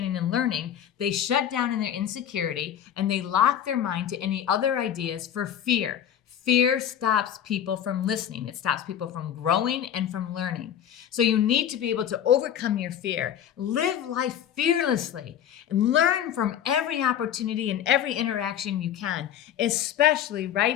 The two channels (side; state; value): right; quieter; 9.9 dB